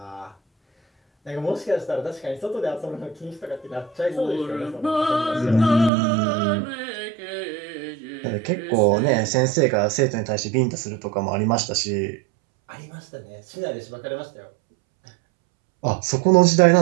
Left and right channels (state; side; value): drops out; left; at 5.9 s